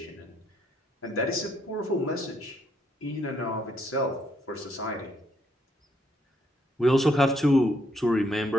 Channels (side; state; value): both; normal; correlation 0.73